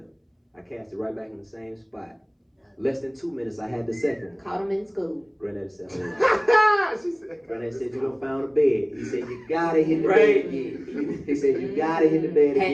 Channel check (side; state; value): both; identical; correlation 1.00